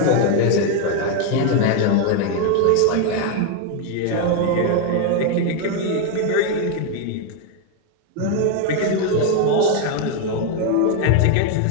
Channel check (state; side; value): different; both; correlation 0.01